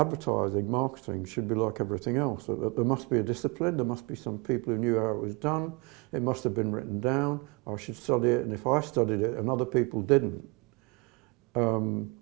marketing should be like everything else, that there must be a discipline, there must be some people who knew how it was done, it must have been written down, I should study it, and if I studied it and other people didn't,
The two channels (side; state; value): left; quieter; 27.3 dB